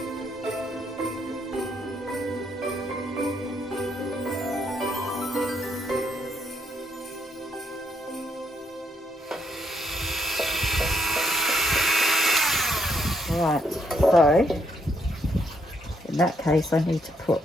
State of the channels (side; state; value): both; normal; correlation 0.74